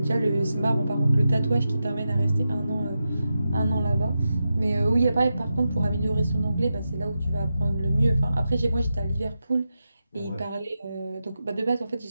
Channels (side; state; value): both; inverted; correlation -0.90